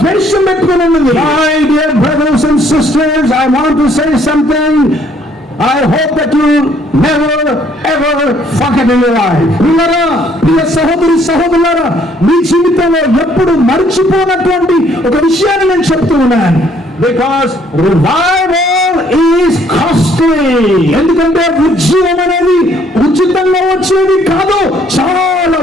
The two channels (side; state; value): both; normal; correlation 0.64